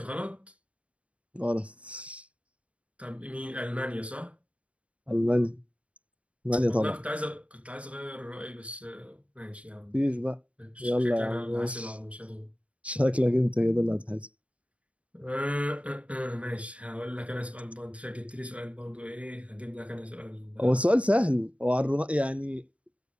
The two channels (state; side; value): late; left; 0.064 ms